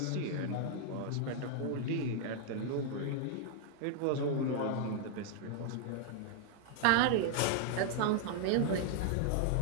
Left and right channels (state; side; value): different; both; correlation 0.00